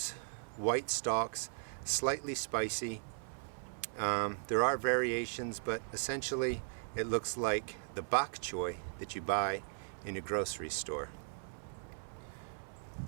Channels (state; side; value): silent; left; 53 dB below the other